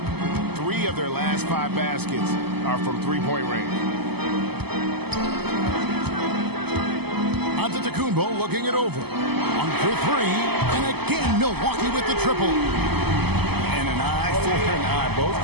3 of their last 5 baskets are from three-point range. Antetokounmpo looking it over. 1 for 3. And again, Milwaukee with the triple. And an eye for an eye. Both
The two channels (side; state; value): left; late; 0.97 ms